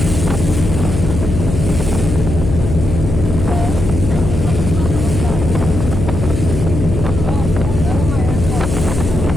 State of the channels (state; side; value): noise; left; hum, 4 dB below the sound